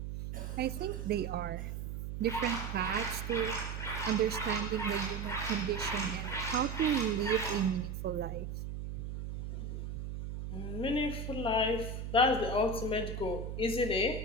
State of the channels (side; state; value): right; noise; hum, 5 dB below the sound